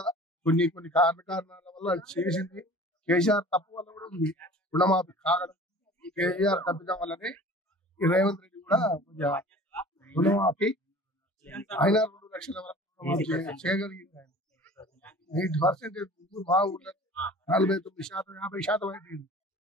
కొన్ని కారణాల వల్ల చేసింది. కేసీఆర్ తప్పు వల్ల కూడా ఉంది రుణమాఫీ కాగడం. కేసీఆర్ తప్పిదం వల్లనే రేవంత్ రెడ్డి కూడా కొంచెం రుణమాఫీ అయినా 2 లక్షల వరకు చేయగలిగింది. ఆయన 8% మా ఊళ్ళో 49%, 50% అయిపోయింది.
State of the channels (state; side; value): normal; both; correlation 0.44